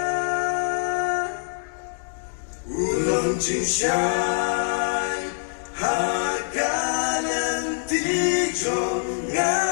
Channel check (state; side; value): silent; right; digital silence